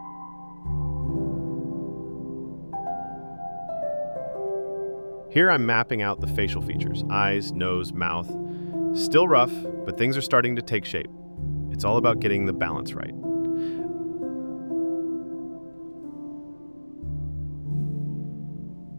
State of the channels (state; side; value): inverted; both; correlation -1.00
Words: Here I'm mapping out the facial features, eyes, nose, mouth. Still rough, but things are starting to take shape. It's all about getting the balance right.